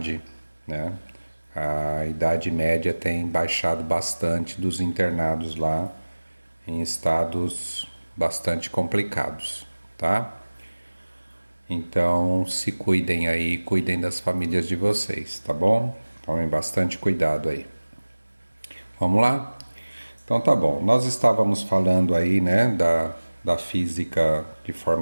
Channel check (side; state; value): both; inverted; correlation -1.00